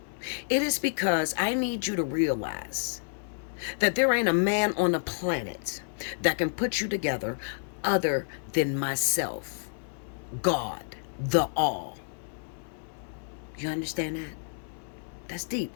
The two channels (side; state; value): right; silent; 58 dB below the other